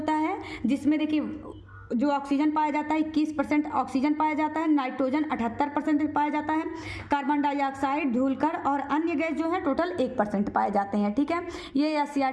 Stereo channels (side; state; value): both; identical; correlation 1.00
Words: है जिसमें देखिए जो ऑक्सीजन पाया जाता है 21% ऑक्सीजन पाया जाता है, नाइट्रोजन 78% पाया जाता है, कार्बन डाइऑक्साइड, धूलकण और अन्य गैस जो है टोटल 1% पाए जाते हैं। ठीक है, ये